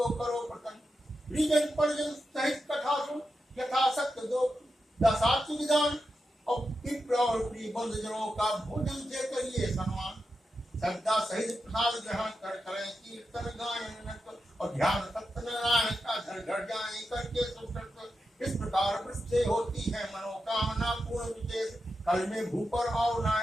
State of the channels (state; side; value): normal; both; correlation 0.89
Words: करो प्रसन्न। परिजन परिजन सहित कथा सुन, यथाशक्त दो दशाति विधान, और पितृ और प्रिय बंधुजनों का भोजन से करिए सम्मान। श्रद्धा सहित प्रसाद ग्रहण कर करें कीर्तन गायन और ध्यान सत्यनारायण का घर घर जाए करके सुकृत। इस प्रकार वृत्ति होती है मनोकामना पूर्ण विशेष। कल में भूपर और न